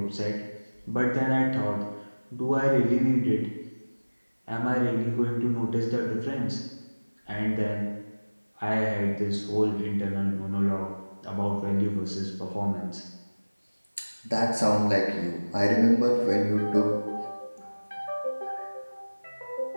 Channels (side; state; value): both; inverted; correlation -1.00